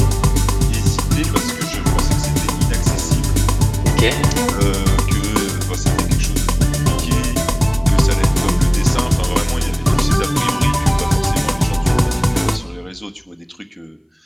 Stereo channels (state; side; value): identical; both; correlation 1.00